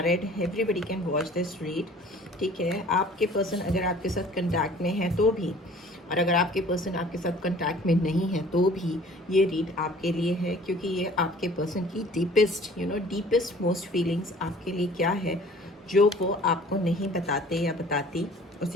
everybody can watch this read. ठीक है, आपके पर्सन अगर आपके साथ कंटैक्ट में है तो भी, और अगर आपके पर्सन आपके साथ कंटैक्ट में नहीं है तो भी ये रीड आपके लिए है, क्योंकि ये आपके पर्सन की डीपेस्ट मोस्ट फीलिंग्स आपके लिए क्या है जो वो आपको नहीं बताते या बताती,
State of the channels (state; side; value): normal; both; correlation 0.50